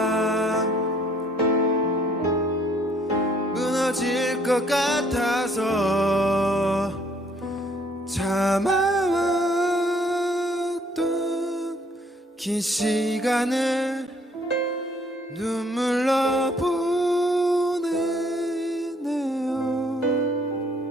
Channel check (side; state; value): both; normal; correlation 0.63